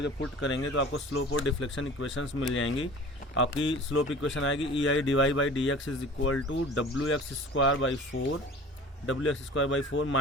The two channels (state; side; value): normal; both; correlation 0.42